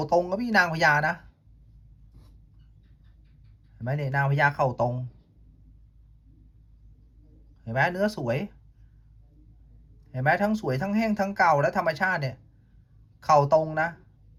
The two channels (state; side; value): identical; both; correlation 1.00